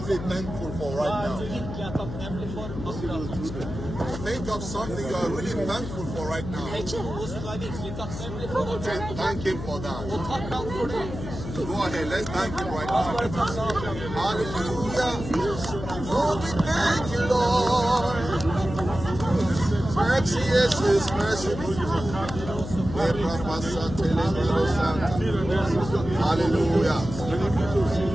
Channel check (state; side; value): noise; left; hum, 8 dB below the sound